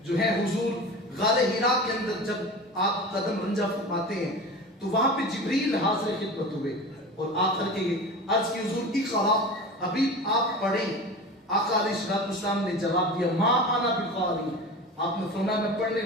جو ہے حضور غار حراء کے اندر جب آپ قدم رنجہ فرماتے ہیں تو وہاں پہ جبریل حاضر خدمت ہوئے اور آخر کے عرض کی حضور اقرا، حبیب آپ پڑھیں۔ آقا علیہ الصلوۃ والسلام نے جواب دیا ما انا بقاری، آپ نے فرمایا میں پڑھنے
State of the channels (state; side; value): normal; both; correlation 0.32